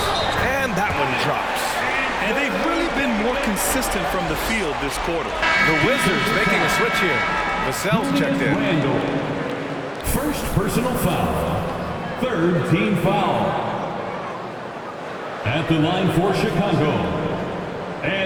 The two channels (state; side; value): identical; both; correlation 1.00